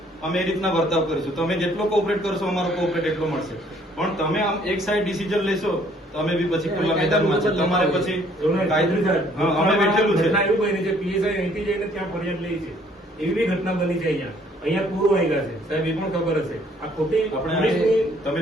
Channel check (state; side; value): normal; both; correlation 0.62